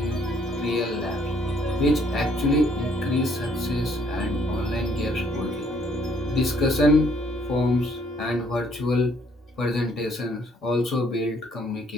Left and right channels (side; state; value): both; normal; correlation 0.65